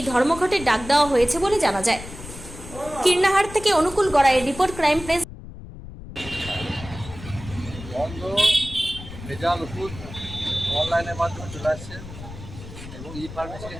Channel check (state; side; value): noise; left; rumble, 13 dB below the sound